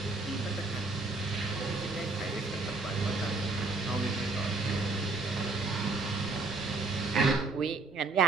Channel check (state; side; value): quieter; left; 3.5 dB